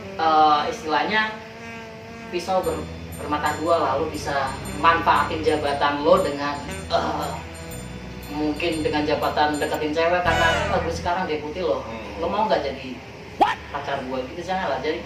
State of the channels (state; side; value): identical; both; correlation 1.00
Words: istilahnya pisau bermata dua, lalu bisa manfaatin jabatan lo dengan mungkin dengan jabatan deketin cewek karena gue sekarang deputi lo mau nggak jadi pacar gue gitu, jangan lah. Jadi